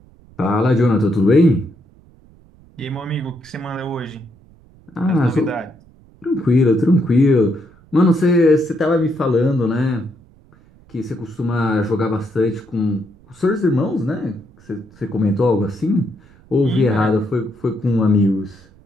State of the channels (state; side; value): noise; right; rumble, 27 dB below the sound